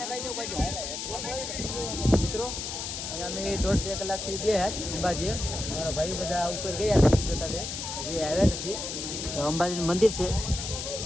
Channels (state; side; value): noise; left; hiss, 5 dB below the sound